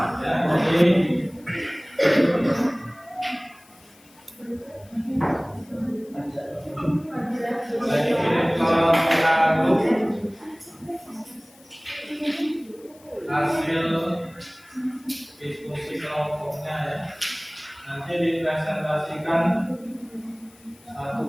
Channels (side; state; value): left; noise; hiss, 27 dB below the sound